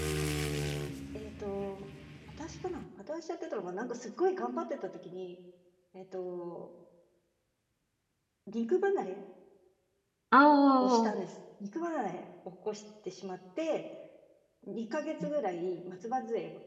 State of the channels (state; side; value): identical; both; correlation 1.00